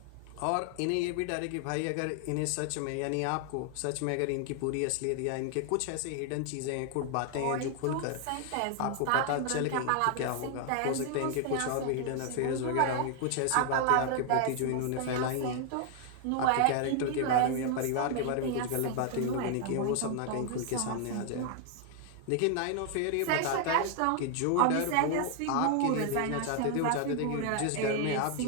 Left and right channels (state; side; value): different; both; correlation 0.00